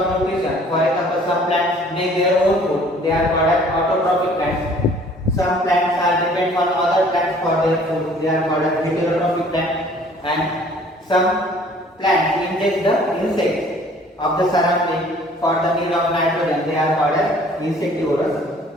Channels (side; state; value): both; normal; correlation 0.54